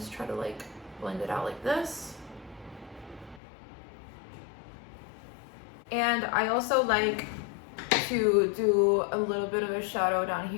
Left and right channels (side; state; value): right; drops out; at 3.4 s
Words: try to like blend it out like this. And I also like to do a little bit of a shadow down